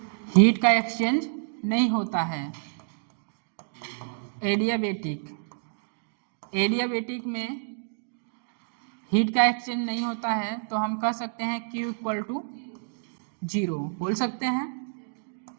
हीट का एक्सचेंज नहीं होता है। एडियाबेटिक में हीट का एक्सचेंज नहीं होता है, तो हम कह सकते हैं Q इक्वल टू 0 बोल सकते हैं।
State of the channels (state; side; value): silent; left; digital silence